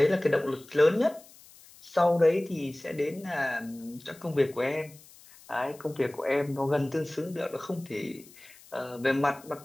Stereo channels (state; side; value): noise; left; hiss, 23 dB below the sound